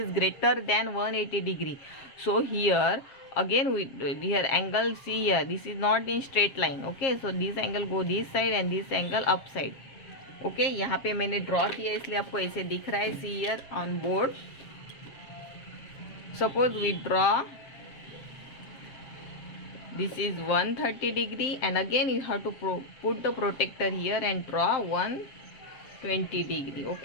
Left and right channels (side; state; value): right; late; 7.4 ms